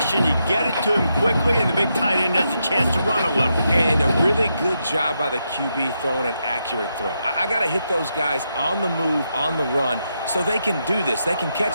You get it to him quickly, and the big tight end has a chance to run a little. And a really good job by the QB throwing an accurate throw. I got to hit those guys on the move, on the run, so they can do this. They can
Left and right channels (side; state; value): both; inverted; correlation -0.83